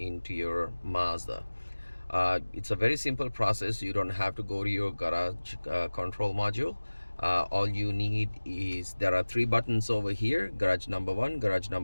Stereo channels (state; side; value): inverted; both; correlation -1.00